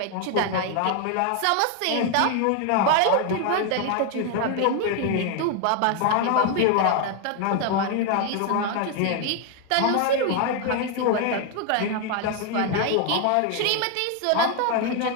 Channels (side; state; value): both; different; correlation 0.01